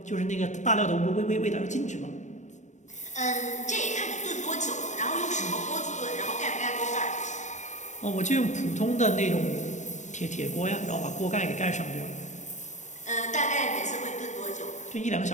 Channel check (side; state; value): right; late; 0.35 ms